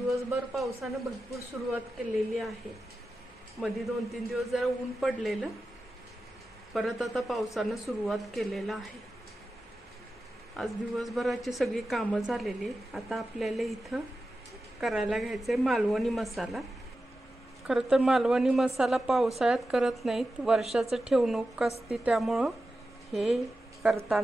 पावसाने भरपूर सुरुवात केलेली आहे. मध्ये 2-3 दिवस जरा ऊन पडलेलं, परत आता पावसानं सुरुवात केलेला आहे. आज दिवसभराची सगळी कामं झालेली. आता आपल्याला इथं करायला घ्यायचं आहे मालवणी मसाला. खरं तर मालवणी मसाला पावसाळ्यात करत नाहीत, वर्षाचं ठेवणूक असते, त्यामुळं हे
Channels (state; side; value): normal; both; correlation 0.93